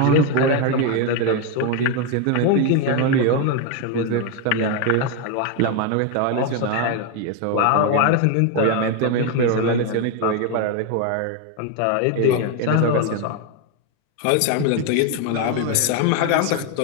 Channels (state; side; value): different; both; correlation 0.01